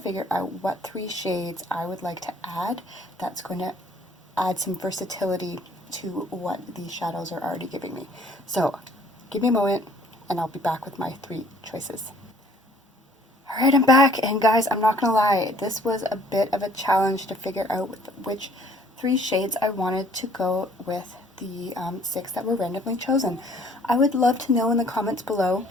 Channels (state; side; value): normal; both; correlation 0.58